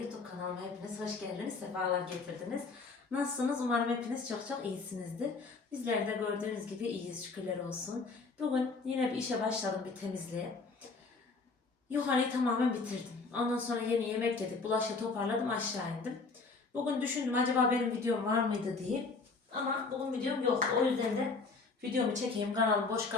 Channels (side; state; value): right; quieter; 4.2 dB